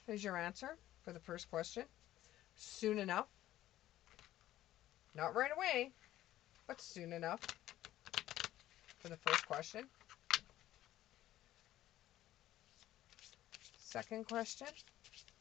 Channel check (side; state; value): right; quieter; 14.1 dB